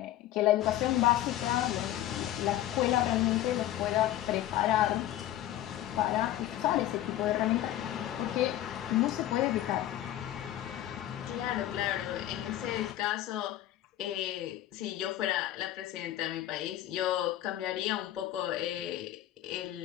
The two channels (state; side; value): quieter; right; 13.3 dB